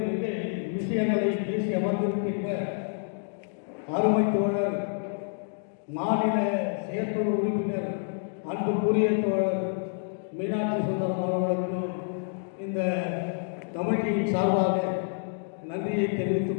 விஷயங்களை பேசி அமர்ந்திருக்கின்ற அருமை தோழர் மாநில செயற்குழு உறுப்பினர் அன்புக்குரிய தோழர் மீனாட்சி சுந்தரம் அவர்களுக்கும் இந்த கமிட்டியின் சார்பாக நன்றியை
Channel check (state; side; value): silent; right; digital silence